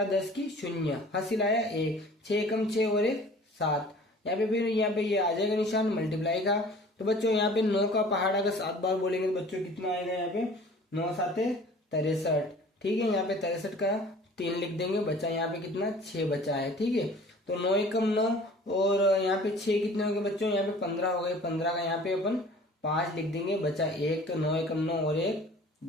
10 की 0, हासिल आया 1, 6 कम 6 और 1 7। यहाँ पे फिर यहाँ पे ये आ जाएगा निशान मल्टीप्लाई का। तो बच्चों यहाँ पे 9 का पहाड़ अगर 7 बार बोलेंगे तो बच्चों कितना आएगा, यहाँ पे 9 7 63, ठीक है। यहाँ पे 63 का 3 लिख देंगे, बच्चा यहाँ पे कितना 6 बचा है, ठीक है। तो 9 एकम 9 और यहाँ पे 6 कितने हो गए बच्चों, यहाँ पे 15 हो गए, 15 का यहाँ पे अपन 5 लिख देंगे, बचा 1, तो 9 एकम 9 और 1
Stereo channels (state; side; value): normal; both; correlation 0.47